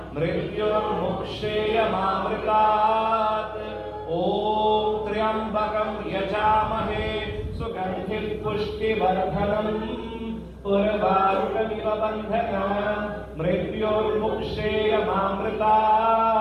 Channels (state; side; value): identical; both; correlation 1.00